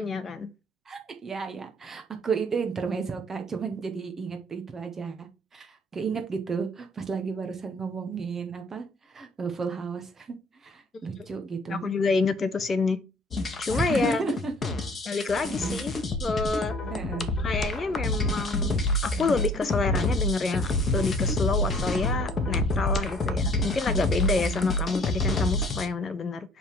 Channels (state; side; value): normal; both; correlation 0.55